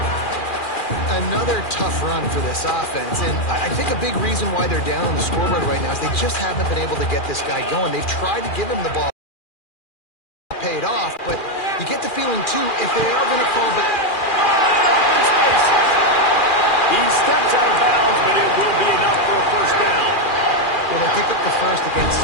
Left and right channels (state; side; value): late; right; 2.4 ms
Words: Another tough run for this offense, and I think a big reason why they're down on the scoreboard right now is they just haven't been able to get this guy going. They've tried to give him the ball, paid off, but you get the feeling too if they are going to call back. He steps out of bounds, but it will be enough for a first down. Well, they pick up the first against